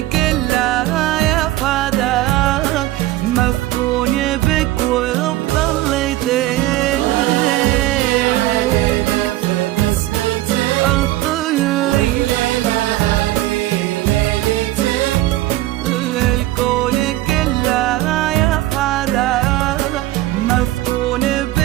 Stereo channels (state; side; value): quieter; left; 16.1 dB